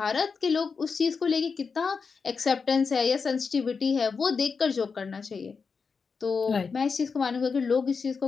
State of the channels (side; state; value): right; quieter; 5.3 dB